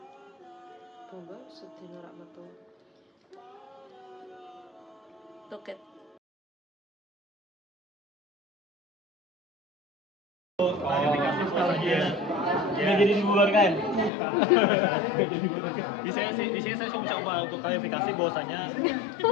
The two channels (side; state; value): right; drops out; at 14.1 s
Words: Coba setir norak betul. Toket. Nggak jadi dibubarkan. Di sini saya coba untuk klarifikasi bahwasanya